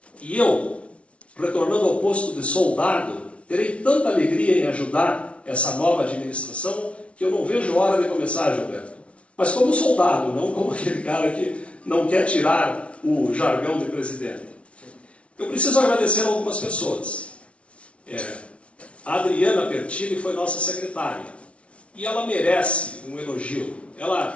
E eu, retornando ao posto de soldado, terei tanta alegria em ajudar essa nova administração que eu não vejo hora de começar, Gilberto. Mas como soldado, não como aquele cara que não quer tirar o jargão de presidente. Eu preciso agradecer a algumas pessoas. A Adriana Pertini foi nossa secretária. E ela merece um elogio.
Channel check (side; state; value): right; late; 0.062 ms